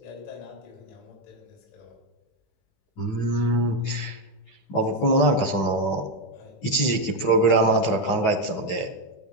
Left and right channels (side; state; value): right; late; 15 ms